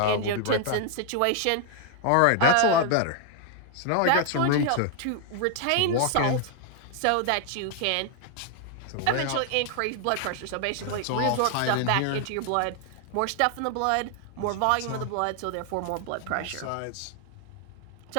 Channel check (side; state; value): both; different; correlation 0.00